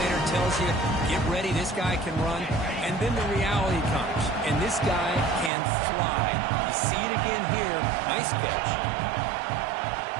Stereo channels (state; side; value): drops out; left; at 5.5 s